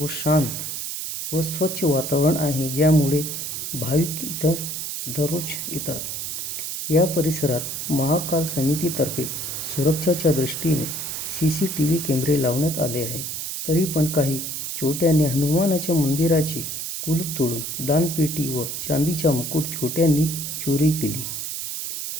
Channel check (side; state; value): right; noise; hiss, 5 dB below the sound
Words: शांत व स्वच्छ वातावरण आहे, ज्यामुळे भाविक इथं दररोज येतात. या परिसरात महाकाल समितीतर्फे सुरक्षेच्या दृष्टीने CCTV कॅमेरे लावण्यात आले आहेत. तरी पण काही चोरट्यांनी हनुमानाच्या मंदिराचे कुलूप तोडून दानपेटी व चांदीचा मुकुट चोरट्यांनी चोरी केली.